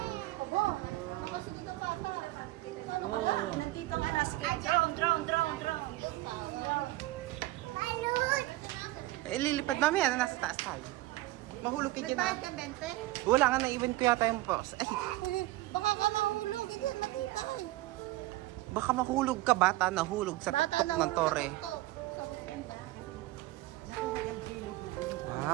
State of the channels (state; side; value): quieter; left; 18.1 dB